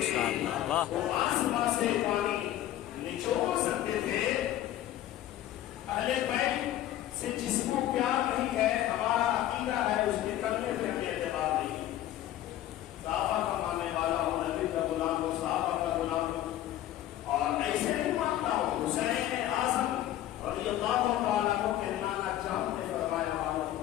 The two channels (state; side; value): quieter; right; 13.1 dB